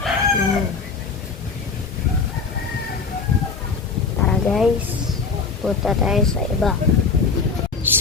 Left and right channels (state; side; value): quieter; right; 4.9 dB